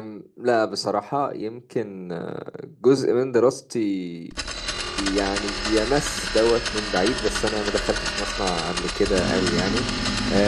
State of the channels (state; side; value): identical; both; correlation 1.00